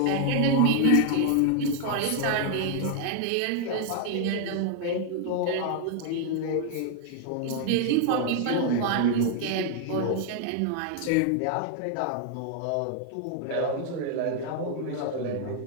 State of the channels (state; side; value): different; both; correlation 0.00